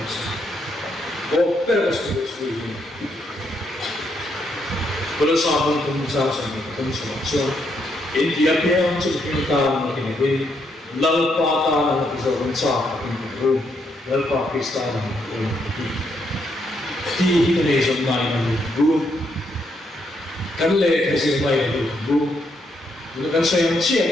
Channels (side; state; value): both; normal; correlation 0.76